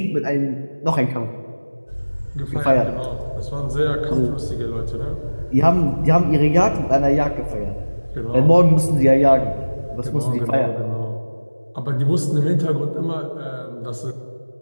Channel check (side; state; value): both; inverted; correlation -1.00